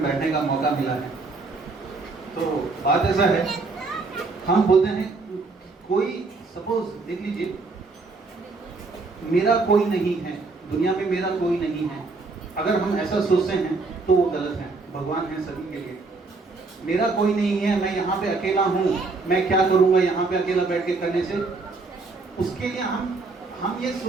बैठने का मौका मिला है। तो बात ऐसा है, हम बोलते हैं कोई सपोज देख लीजिए मेरा कोई नहीं है, दुनिया में मेरा कोई नहीं है। अगर हम ऐसा सोचते हैं तो वो गलत है। भगवान है सभी के लिए। मेरा कोई नहीं है, मैं यहाँ पे अकेला हूँ, मैं क्या करूँगा यहाँ पे अकेला बैठ के करने से, उसके लिए हम ये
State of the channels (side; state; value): left; quieter; 3.8 dB